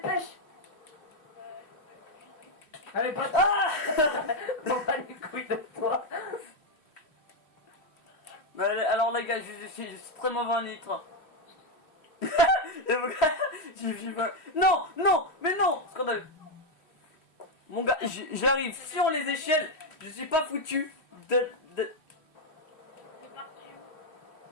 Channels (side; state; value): right; late; 3.1 ms